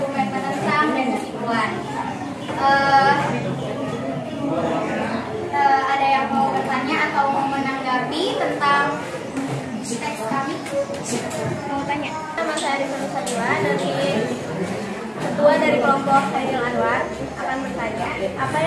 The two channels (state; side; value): identical; both; correlation 1.00